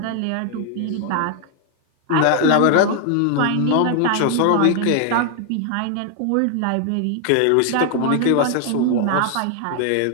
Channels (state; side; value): different; both; correlation 0.00